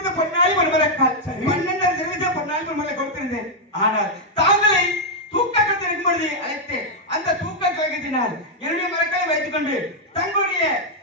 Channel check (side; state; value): both; normal; correlation -0.02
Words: பொன்னாடி மறுமலக்கால் 12 தெரிவித்த பொன்னாடி மறுமலை கொடுத்திருந்தேன். ஆனால் தாங்களை தூக்க கட்டிருக்கும் பொழுது அழைத்தேன். அந்த தூக்க கழகத்தினால் என்னுடைய மரக்களை வைத்துக் கொண்டு தங்களுடைய